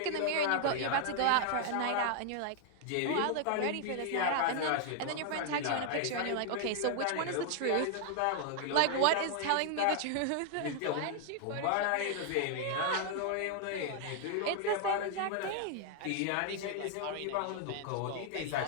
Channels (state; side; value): different; both; correlation 0.00